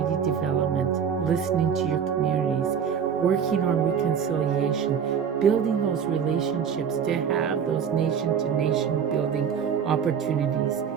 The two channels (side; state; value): left; quieter; 7.5 dB